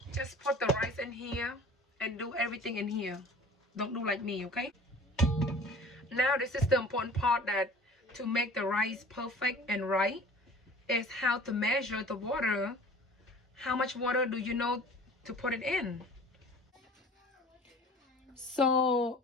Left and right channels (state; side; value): normal; both; correlation 0.45